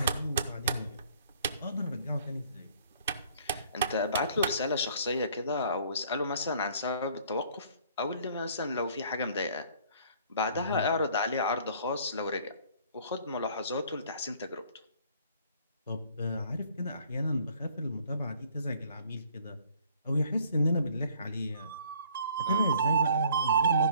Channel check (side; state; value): both; inverted; correlation -0.57